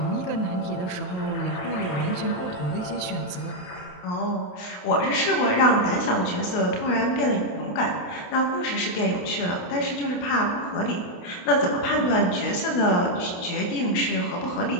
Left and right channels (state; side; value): late; right; 28 ms